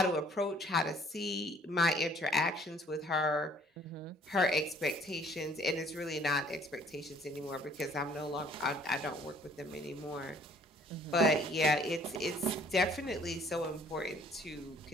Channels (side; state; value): both; normal; correlation 0.59